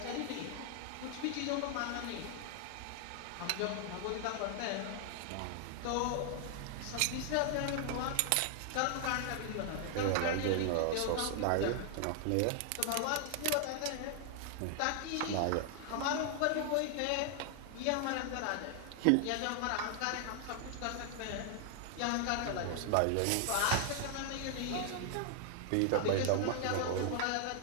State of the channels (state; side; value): different; both; correlation 0.00